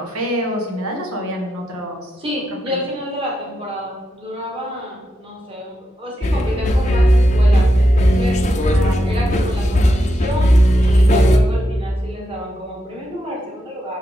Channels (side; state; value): both; normal; correlation 0.85